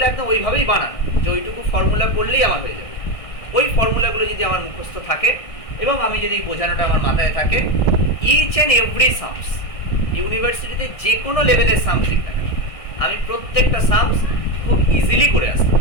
একদম ওইভাবেই বানানো যে ওইটুকু ফর্মুলা পড়লেই আমার হয়ে যাবে। ওই ফর্মুলাগুলো যদি আমার মুখস্থ থাকে এবং আমি যদি বোঝানোটা আমার মাথায় থাকে, ইচ অ্যান্ড এভরি সামস, ইউনিভার্সিটিতে যে কোনো লেভেলের সামস লিখ না কেন, আমি প্রত্যেকটা সামস খুব ইজিলি করে আসতে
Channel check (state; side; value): late; right; 1.6 ms